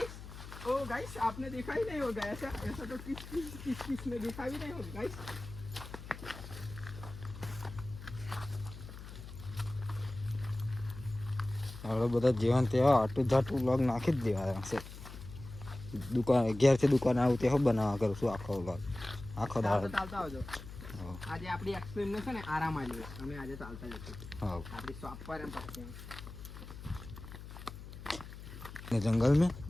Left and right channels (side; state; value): left; noise; hum, 13 dB below the sound